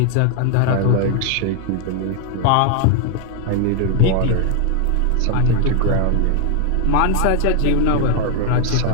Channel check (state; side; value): different; both; correlation 0.00